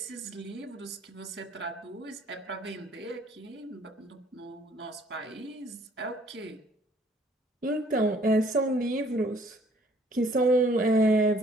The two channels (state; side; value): normal; both; correlation 0.60